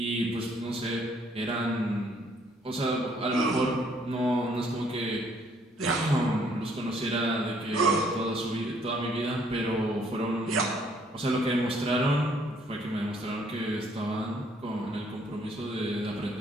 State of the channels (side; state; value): both; normal; correlation 0.65